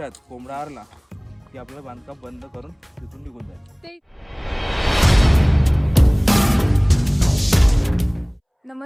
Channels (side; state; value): both; identical; correlation 1.00